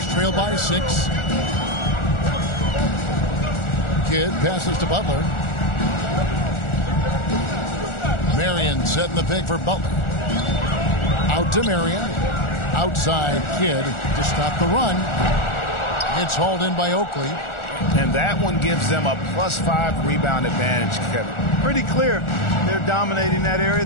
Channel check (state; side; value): late; right; 1.4 ms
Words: trail by 6. Kidd passes to Butler. Marion setting the pick for Butler. Out to Marion. Outside Kidd to stop the run. It's hauled in by Oakley. And that one gives them a +5 rebound advantage, Kevin. Pretty clear. They're dominating that area.